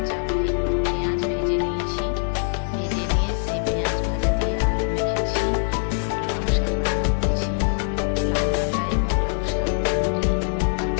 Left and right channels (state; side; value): silent; right; 63 dB below the other